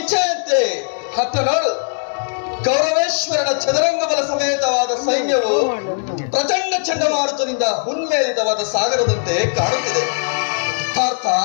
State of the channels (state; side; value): silent; right; digital silence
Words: ಹತ್ತ ನೋಡು. ಕೌರವೇಶ್ವರನ ಚದುರಂಗ ಬಲ ಸಮೇತವಾದ ಸೈನ್ಯವು ಪ್ರಚಂಡ ಚಂಡಮಾರುತದಿಂದ ಹುನ್ಮೇಲಿತವಾದ ಸಾಗರದಂತೆ ಕಾಣುತ್ತಿದೆ. ಪಾರ್ಥ,